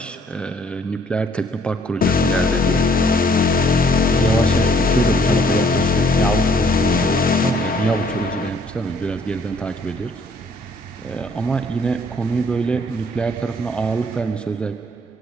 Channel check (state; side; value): normal; both; correlation 0.62